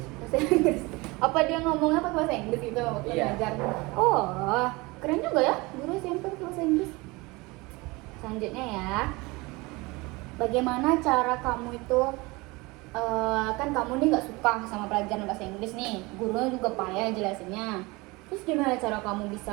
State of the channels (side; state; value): left; quieter; 23.9 dB